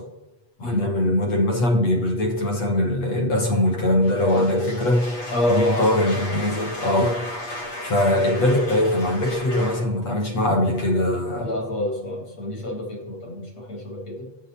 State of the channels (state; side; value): late; right; 8.3 ms